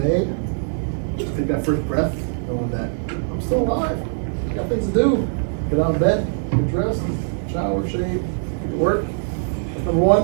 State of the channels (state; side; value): silent; left; digital silence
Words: day, take that first breath, knowing that I'm still alive. Got things to do. Get out of bed, get dressed, shower, shave, get to work. That's number